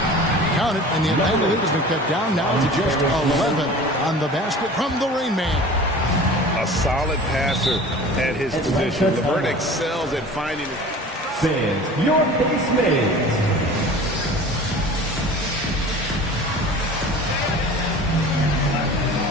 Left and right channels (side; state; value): both; normal; correlation 0.40